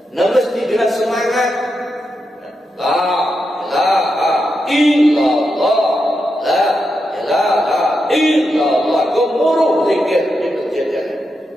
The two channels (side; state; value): both; normal; correlation 0.86